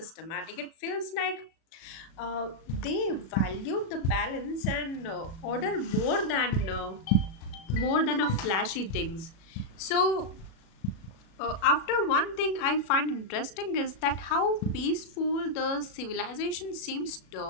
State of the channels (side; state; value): right; late; 37 ms